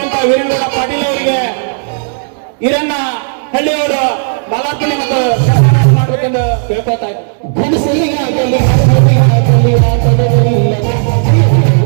ವೀರನಗೌಡ ಪಾಟೀಲ್ ಅವರಿಗೆ ಈರಣ್ಣ ಹಳ್ಳಿಯವರು ಮಾಲಾರ್ಪಣೆ ಮತ್ತು ಸನ್ಮಾನ ಮಾಡಬೇಕೆಂದು ಕೇಳ್ಕೊತಾ ಇದ್ದಾರೆ.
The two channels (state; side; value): silent; left; digital silence